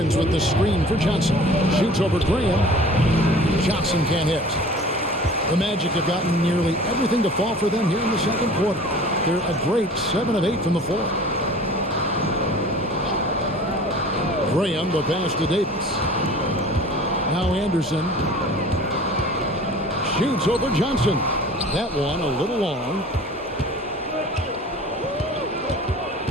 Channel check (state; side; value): normal; both; correlation 0.44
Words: with the screen for Johnson. Shoots over Graham. Johnson can't hit. The Magic have gotten nearly everything to fall for them here in the second quarter. They're a great 7 of 8 from the floor. Graham, the pass to Davis. Now Anderson. Shoots over Johnson. That one a little long.